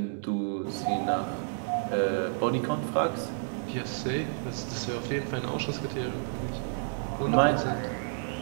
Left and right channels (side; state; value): left; silent; digital silence